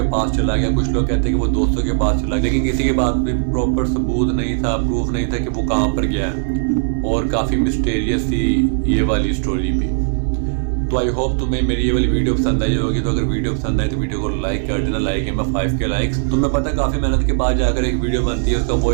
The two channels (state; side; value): silent; left; digital silence